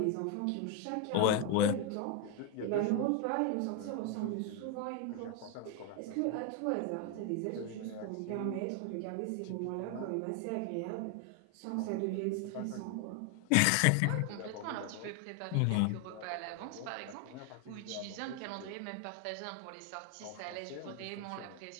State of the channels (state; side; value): different; both; correlation 0.01